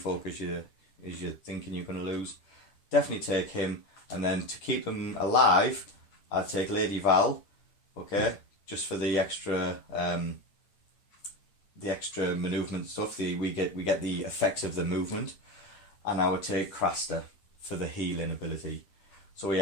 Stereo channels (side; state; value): right; late; 10 ms